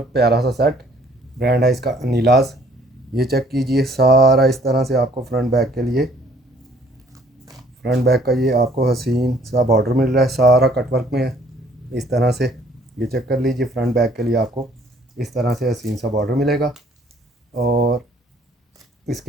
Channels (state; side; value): normal; both; correlation 0.59